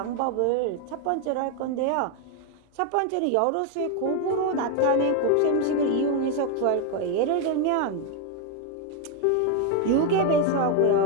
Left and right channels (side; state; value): both; different; correlation 0.01